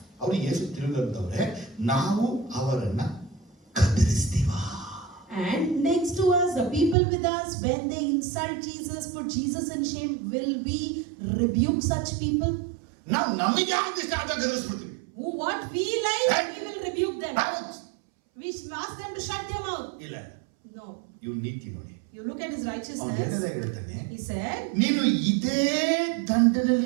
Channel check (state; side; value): drops out; left; at 7.0 s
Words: ಅವರು ಯೇಸು ತಿರುಗಂತವ್ರೆ, ನಾವು ಅವರನ್ನ ಕತ್ತರಿಸ್ತೀವ. And next to us, the people with us, when they insult Jesus, put Jesus in shame, will we rebuke such people? ನಾವು ನಮಗೆ ಆಗಿಷ್ಟ ಆದ ಗದರಿಸ್ಬಿಡ್ತೀವಿ. What we like, we will rebuke them. We ask them to shut their mouth. ಇಲ್ಲ, No. ಇವ್ ನೀತಿ ನೋಡಿ. You look at his ಅವ್ನು righteousness. ಹೇಳ್ತಾನೆ, He said, ನೀನು ಇದೇ